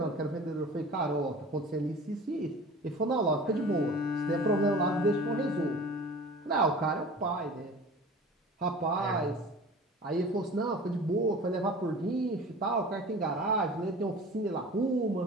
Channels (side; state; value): both; normal; correlation 0.40